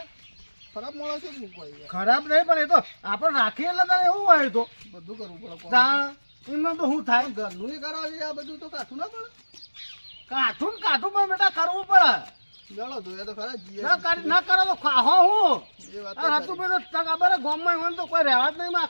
ખરાબ માણસ જ મૂકવાય ખરાબ નહીં પણ એ તો આપણે રાખીએ એટલે તારે એવું હોય તો બધું કરવું પડે કોમ. તાણ એમને તો શું થાય ઘરનું કરાવી આ બધું તો કાઠું ના પડે કાઠું ને કાઠું પણ બેટા કરવું પડે ગળો જોયા તો ખરા ના કરી ના કરો તો ખાહો હું એ વાત આ હતું બધું ખબર ગામમાં હોય તો કોઈ રહેવા જ નહીં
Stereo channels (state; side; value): inverted; both; correlation -1.00